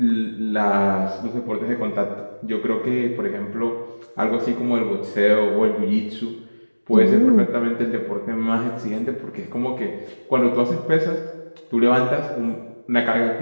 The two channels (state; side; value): inverted; both; correlation -1.00